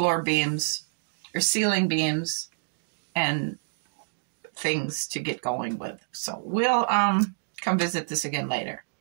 beams or ceiling beams and things to get going with. So we'll come visit this again later.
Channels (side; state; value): left; silent; digital silence